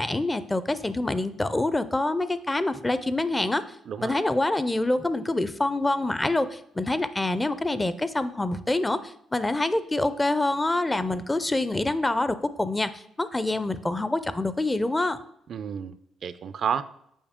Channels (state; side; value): normal; both; correlation 0.93